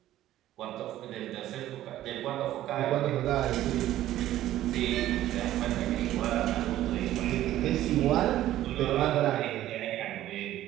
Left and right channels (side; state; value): left; quieter; 13.7 dB